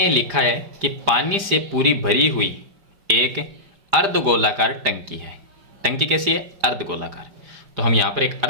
लिखा है कि पानी से पूरी भरी हुई एक अर्धगोलाकार टंकी है। टंकी कैसी है, अर्धगोलाकार। तो हम यहाँ पर एक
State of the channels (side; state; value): left; late; 5.0 ms